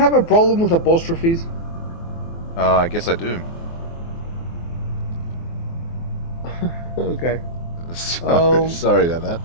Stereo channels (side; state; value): right; late; 24 ms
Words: a problem with apostrophes? I guess I do. Okay. Sorry, sorry about that.